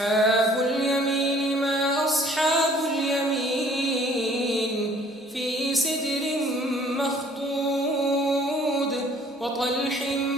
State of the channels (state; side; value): normal; both; correlation 0.56